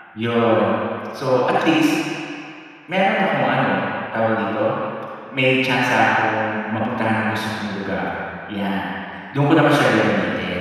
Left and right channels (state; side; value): identical; both; correlation 1.00